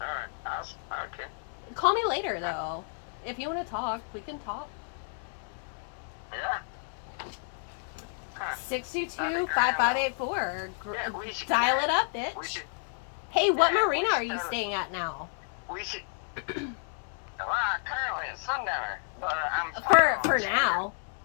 okay. Call me later though. If you want to talk, we can talk. Yeah. Huh. 622-5584. Yeah, we should Dial it up, We bitch. should, Hey, what yeah, we marina should are you totally- staying at now? we should, currently at Sundowner, but I'm For now.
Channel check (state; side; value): silent; right; 57 dB below the other